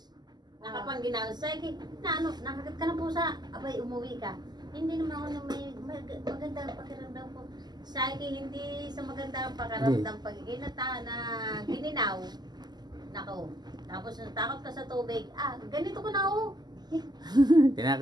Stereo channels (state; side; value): late; left; 0.20 ms